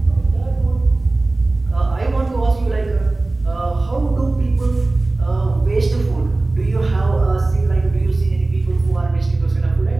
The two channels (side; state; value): left; quieter; 3.1 dB